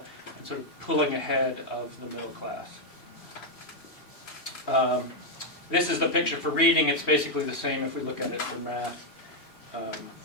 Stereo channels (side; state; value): right; late; 2.7 ms